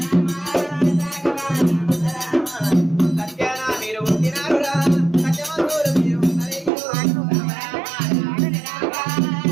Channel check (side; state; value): left; drops out; at 6.7 s